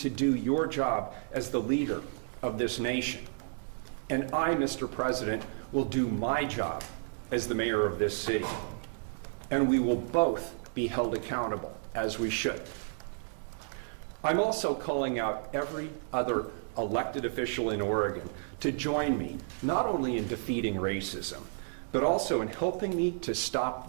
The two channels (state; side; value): silent; left; digital silence